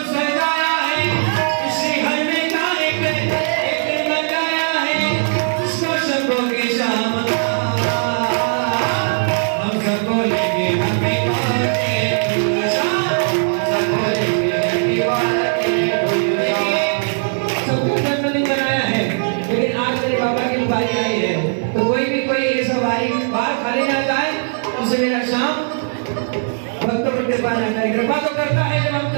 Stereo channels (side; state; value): left; silent; digital silence